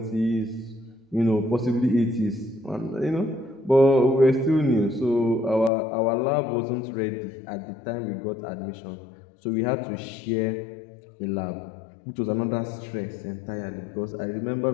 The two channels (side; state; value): right; drops out; at 5.7 s